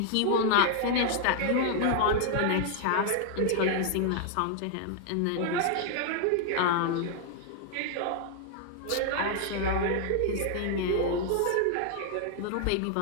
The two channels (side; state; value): both; different; correlation 0.00